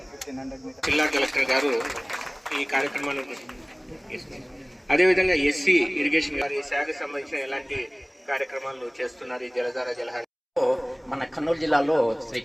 జిల్లా కలెక్టర్ గారు ఈ కార్యక్రమాన్ని అదేవిధంగా ఎస్సీ ఇరిగేషన్ గారు ఈ శాఖకు సంబంధించిన ఎలాంటి కార్యక్రమాలు చేస్తున్నారు? ఈ జలధార జలహార మన కర్నూలు జిల్లాలో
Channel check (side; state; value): both; identical; correlation 1.00